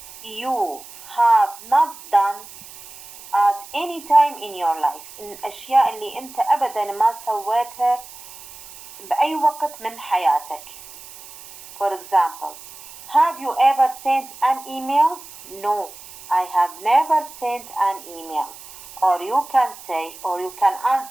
you have not done at any time in your life. الأشياء اللي أنت أبدا ما سويتها بأي وقت من حياتك. For example, have you ever sent an email? No, I have never sent an email. Or you can say, or you can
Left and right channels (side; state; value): right; noise; hiss, 17 dB below the sound